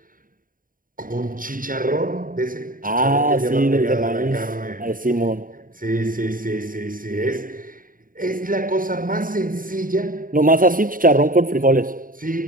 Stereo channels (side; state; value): left; late; 0.40 ms